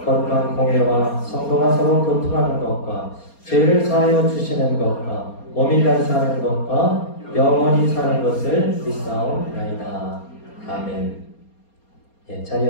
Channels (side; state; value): right; late; 4.3 ms